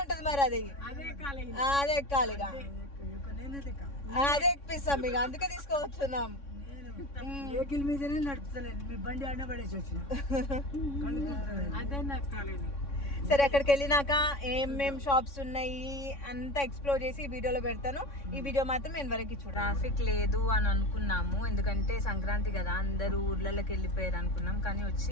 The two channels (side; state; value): right; late; 3.6 ms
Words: ఉంటది మరి, అది అదే ఎక్కాలి. ఇక అదే ఎక్కిస్తాం, ఇక అందుకే తీసుకువస్తున్నాం. వెహికల్ మీదనే నడుపుతలేదు, మీ బండి అన్న పడేసి వచ్చిన. సరే, అక్కడికి వెళ్ళినాక ఏమేం షాప్స్ ఉన్నాయి అంతా ఎక్స్ప్లోర్ చేసి ఈ వీడియోలో పెడతాను. ఈ వీడియో మాత్రం నేను వరకు చూడ. ట్రాఫిక్ లేదు అని అనుకున్నాము, ఎందుకంటే సంక్రాంతి కదా, అందరూ ఊర్లలోకి వెళ్ళిపోయారు అనుకున్నాం. కానీ